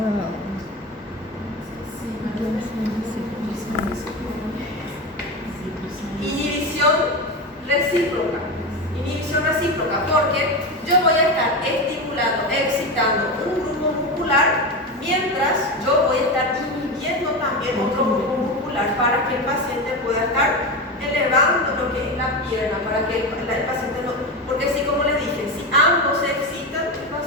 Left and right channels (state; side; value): normal; both; correlation 0.19